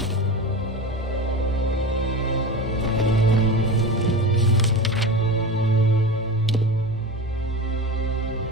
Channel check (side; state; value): both; normal; correlation 0.28